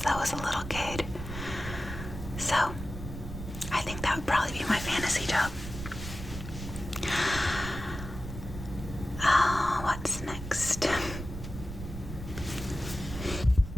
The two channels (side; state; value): right; noise; rumble, 9 dB below the sound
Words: I was a little kid. So, I think that would probably be my fantasy job. What's next?